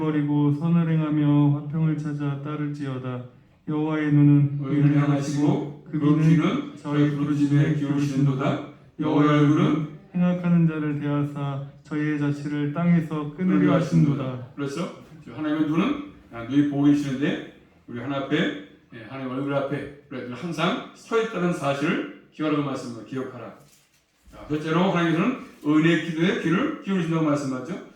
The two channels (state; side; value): identical; both; correlation 1.00